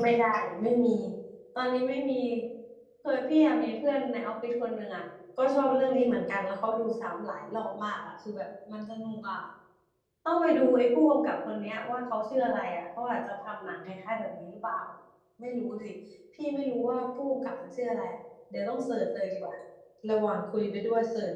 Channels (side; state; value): both; identical; correlation 1.00